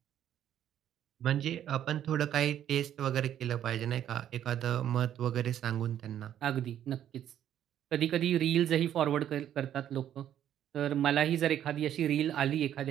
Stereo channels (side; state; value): left; quieter; 10.6 dB